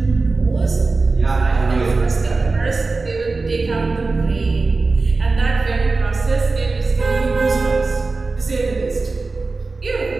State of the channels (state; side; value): quieter; left; 3.7 dB